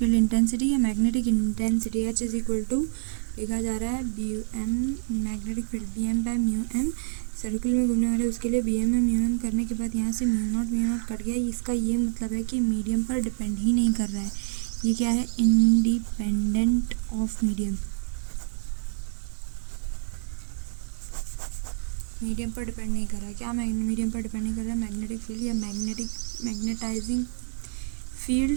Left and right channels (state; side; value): silent; left; 60 dB below the other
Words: intensity या magnetic intensity H is equal to लिखा जा रहा है BM magnetic field BM/μm। Circle में घूमने वाले उसके लिए BM/μm करने के बाद यहाँ से म्यू नॉट कट गया। इसका ये मतलब है कि मीडियम पर डिपेंड ही नहीं कर रहा है। ये क्या है, इंडिपेंडेंट ऑफ मीडियम। मीडियम पर डिपेंड नहीं कर रहा है। क्या मीडियम पर डिपेंड नहीं कर रहा है? मैग्नेटिक फील्ड या मैग्नेटाइजिंग